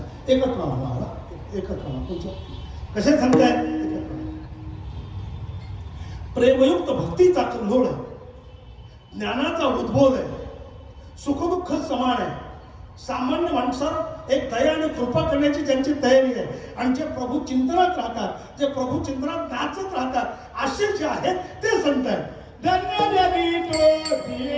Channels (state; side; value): identical; both; correlation 1.00